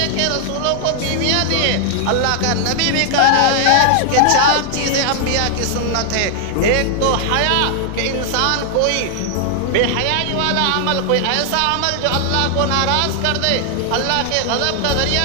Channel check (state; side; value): different; both; correlation 0.00